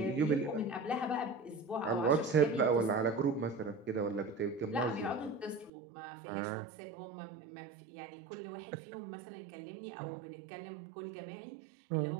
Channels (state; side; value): drops out; left; at 5.7 s